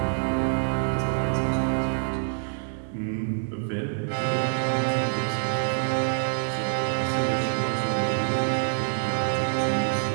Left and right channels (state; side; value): silent; left; digital silence